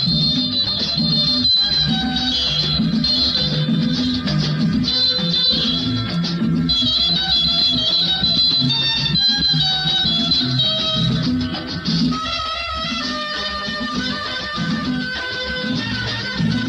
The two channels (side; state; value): both; identical; correlation 1.00